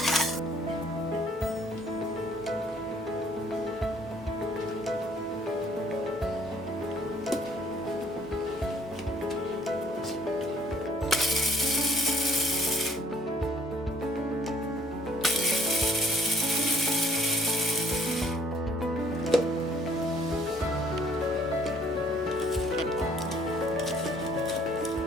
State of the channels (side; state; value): both; normal; correlation 0.60